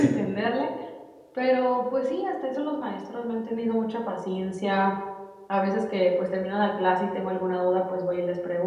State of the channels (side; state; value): both; identical; correlation 1.00